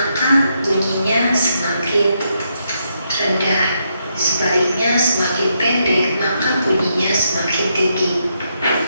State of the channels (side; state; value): both; inverted; correlation -0.79